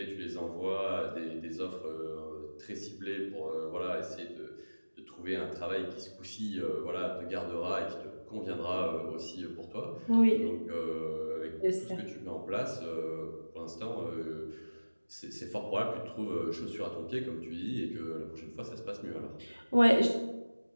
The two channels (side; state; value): both; inverted; correlation -1.00